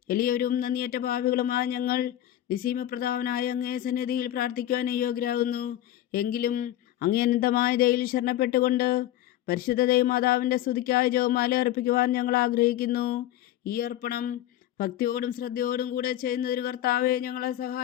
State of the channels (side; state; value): right; quieter; 13.0 dB